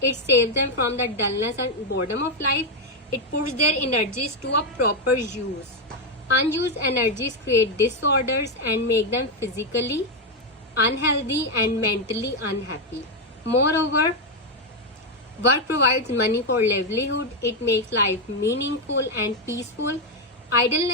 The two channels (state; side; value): normal; both; correlation 0.04